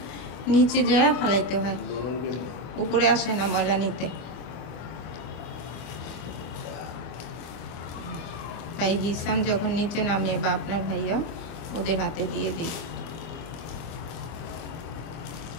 নিচে যায় ফেলাইতে হয়, উপরে আসে না ময়লা নিতে। তাই হিসাম যখন নিচে নামে বা আপনার ভাইয়া ওদের হাতে দিয়ে দিই।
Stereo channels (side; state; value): right; late; 24 ms